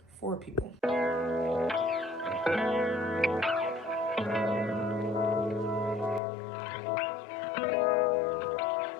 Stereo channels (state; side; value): drops out; right; at 6.2 s